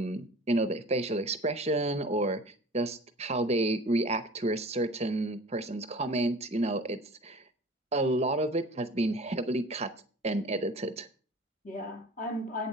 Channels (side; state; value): both; normal; correlation 0.43